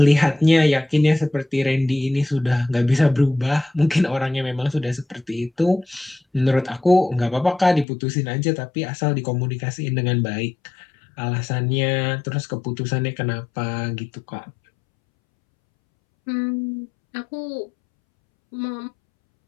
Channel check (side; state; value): right; drops out; at 7.9 s